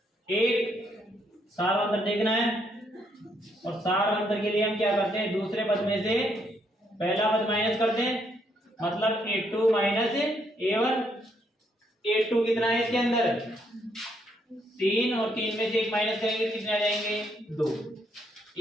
1। सार अंतर देखना है, और सार अंतर के लिए हम क्या करते हैं, दूसरे पद में से पहला पद माइनस करते हैं, मतलब a2 माइनस a1। a2 कितना है इसके अंदर, 3, और 3 में से 1 माइनस करेंगे कितने आ जाएंगे, 2।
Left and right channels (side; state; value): both; normal; correlation 0.73